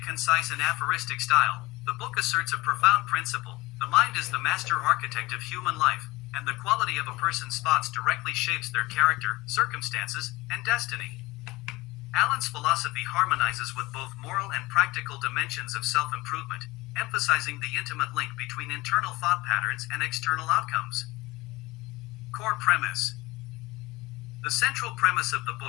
concise and aphoristic style, the book asserts a profound principle: the mind is the master architect of human life, and the quality of a person's thoughts directly shapes their character, circumstances, and destiny. Allen's philosophy harmonizes with both moral and practical dimensions of self-improvement, emphasizing the intimate link between internal thought patterns and external outcomes. Core premise. The central premise of the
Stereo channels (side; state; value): right; quieter; 20.8 dB